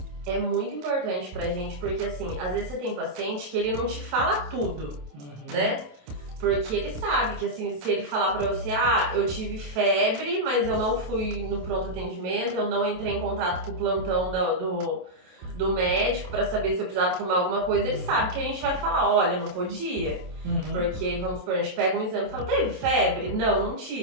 É muito importante pra gente, porque assim, às vezes você tem paciente que ele não te fala tudo, né? Porque ele sabe que assim, se ele falar pra você, eu tive febre, mas eu não fui no pronto atendimento, eu não entrei em contato com o plantão do médico pra saber se eu precisava tomar alguma coisa, ele sabe que a gente vai falar, olha, não podia. Porque, vamos supor, a gente pega um exame e fala, teve febre? Não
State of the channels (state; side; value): late; left; 27 ms